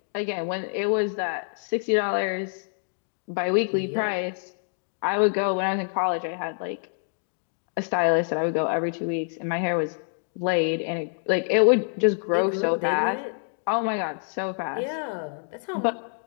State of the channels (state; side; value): silent; right; digital silence